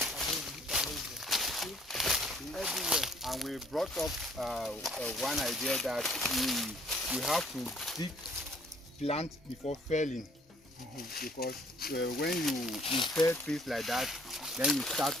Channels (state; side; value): normal; both; correlation 0.61